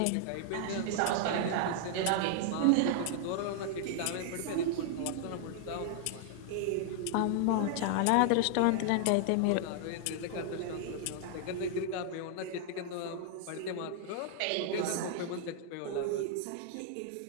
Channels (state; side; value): different; both; correlation 0.00